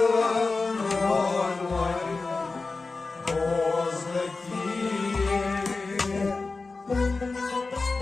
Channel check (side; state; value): right; quieter; 3.9 dB